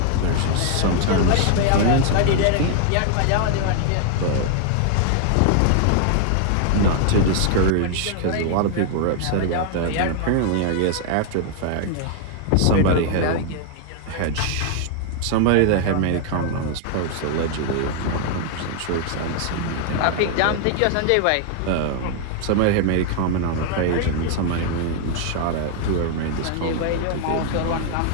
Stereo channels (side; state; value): both; different; correlation 0.00